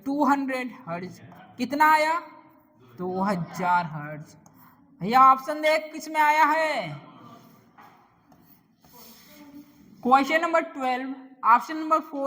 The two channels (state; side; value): identical; both; correlation 1.00